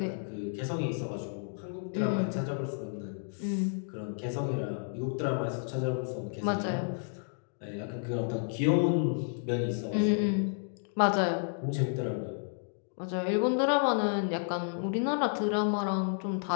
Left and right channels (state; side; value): silent; right; digital silence